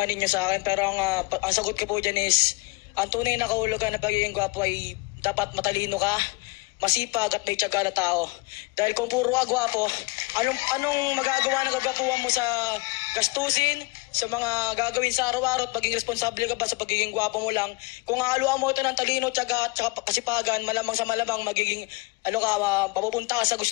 ninyo sa akin, pero ang sagot ko po dyan is, ang tunay na kahulugan ng pagiging gwapo ay dapat matalino ka, masipag at may tiyaga na tao. Dahil kung puro ka gwapo, anong magagawa ng kagwapuhan mo sa gastusin, sa mga gagawin sa araw-araw at maging responsable ka ba sa pagiging gwapo mo lang? Kung haluan mo ito ng talino, tiyaga at kasipagan, malamang sa malamang magiging papupunta ka sa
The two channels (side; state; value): right; quieter; 26.1 dB